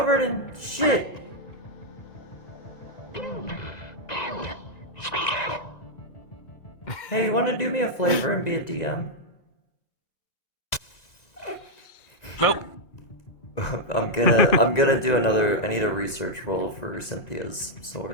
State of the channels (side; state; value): right; late; 1.9 ms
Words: in shit? Hey, you want to do me a favor and be a DM? Nope. I'm gonna do another. I need a research roll for Cynthia's